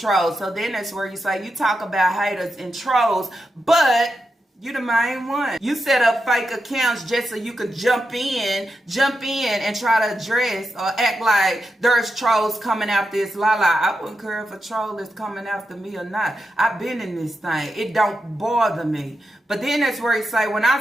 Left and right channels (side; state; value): both; normal; correlation 0.87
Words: So then that's where you say, you talk about haters and trolls, but you the main one. You set up fake accounts just so you could jump in and try to address or act like there's trolls coming after this Lala. I wouldn't care if a troll is coming after me or not. I've been in this thing. It don't bother me. But then that's where you say, when